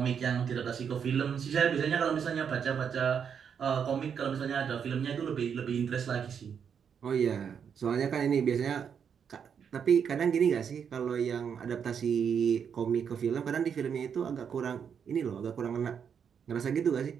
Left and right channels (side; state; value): left; quieter; 7.4 dB